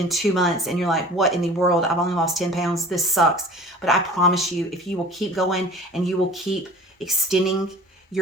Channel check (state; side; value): normal; both; correlation 0.43